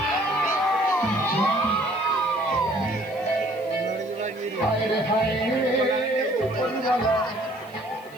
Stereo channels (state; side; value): noise; left; hiss, 26 dB below the sound